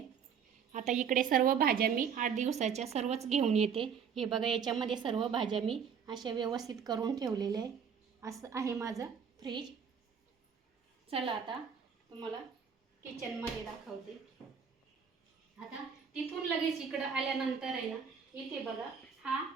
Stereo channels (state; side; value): quieter; left; 7.0 dB